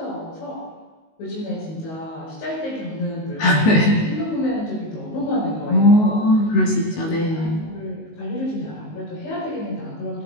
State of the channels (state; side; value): late; right; 19 ms